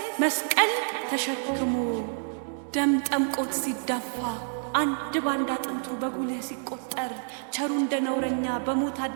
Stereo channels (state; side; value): silent; left; 59 dB below the other